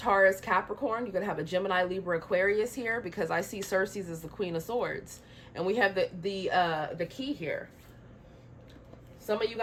Capricorn. You could have a Gemini, Libra, Aquarius here, because I see Cersei's as the Queen of Swords. And we have the key here. Some of you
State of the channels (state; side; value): identical; both; correlation 1.00